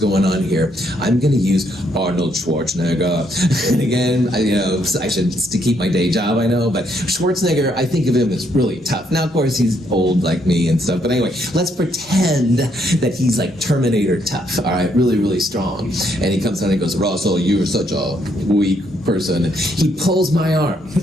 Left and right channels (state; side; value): normal; both; correlation 0.73